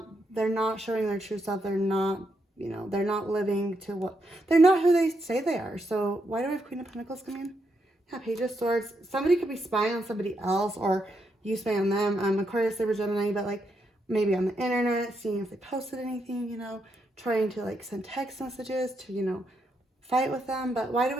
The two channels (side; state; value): both; normal; correlation 0.80